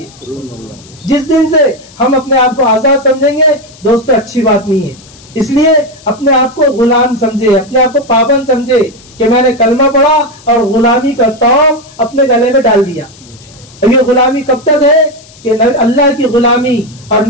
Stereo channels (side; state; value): left; noise; hiss, 24 dB below the sound